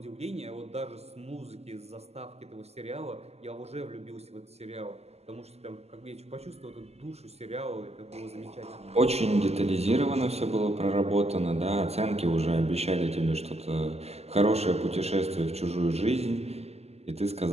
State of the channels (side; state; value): left; late; 0.30 ms